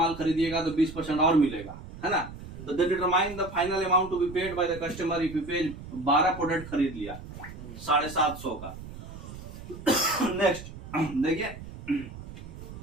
खरीदिएगा तो 20% और मिलेगा, है ना। तो determine the final amount to be paid by the customer if you pay 12 product खरीद लिया 750 का। नेक्स्ट देखिए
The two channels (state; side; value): noise; right; rumble, 13 dB below the sound